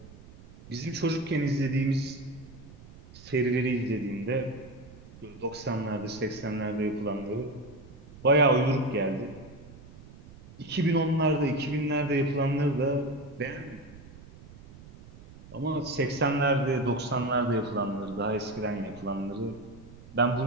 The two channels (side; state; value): right; noise; rumble, 19 dB below the sound